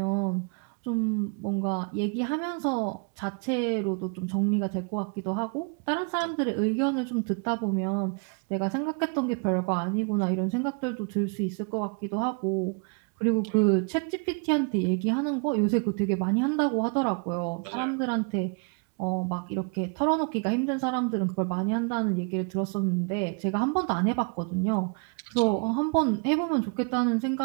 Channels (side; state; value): left; quieter; 37.3 dB